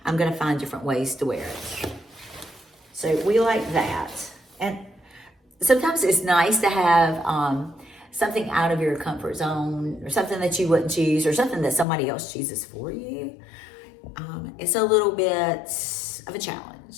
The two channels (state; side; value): drops out; right; at 11.9 s